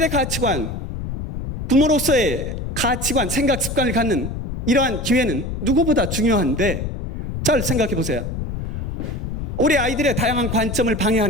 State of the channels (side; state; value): left; noise; rumble, 5 dB below the sound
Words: 가치관, 부모로서의 가치관, 생각 습관을 갖는 이러한 기회는 누구보다 중요한데 잘 생각해 보세요. 우리 아이들의 다양한 관점을